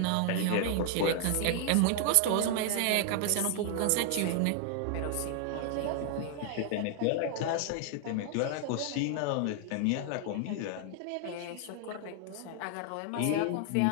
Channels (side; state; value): both; different; correlation 0.00